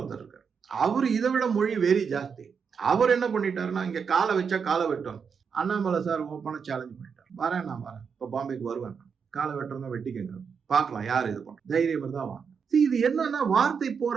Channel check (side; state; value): left; quieter; 6.2 dB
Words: இருக்காரு. அவரு இதை விட மொழி வெறி ஜாஸ்தி. அவர் என்ன பண்ணிட்டாருன்னா, இங்க காலை வச்சா காலை வெட்டணும். அண்ணாமலை சார் ஓப்பனா சேலஞ்ச் பண்ணிட்டார். நான் வரேன், இப்ப பாம்பேக்கு வருவேன், காலை வெட்டுறதா வெட்டிக்கங்க, பார்க்கலாம் யார் இது பண்ற, தைரியம் தான் வாங்க. இது என்னன்னா, வார்த்தை போற